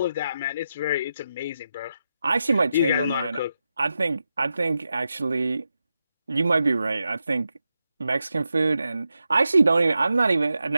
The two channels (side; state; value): both; inverted; correlation -0.88